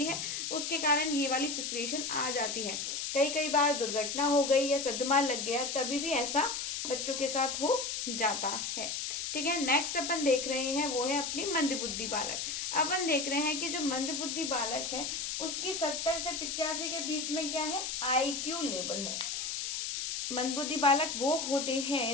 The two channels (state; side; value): noise; left; hiss, 3 dB below the sound